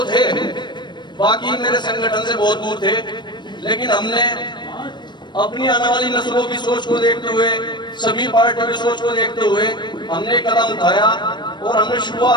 थे, बाकी मेरे संगठन से बहुत दूर थे, लेकिन हमने अपनी आने वाली नस्लों की सोच को देखते हुए, सभी पार्टियों की सोच को देखते हुए हमने कदम उठाया और हमने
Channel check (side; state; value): right; late; 0.22 ms